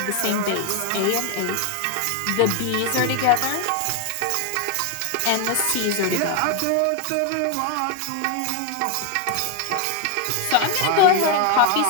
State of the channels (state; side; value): different; both; correlation 0.01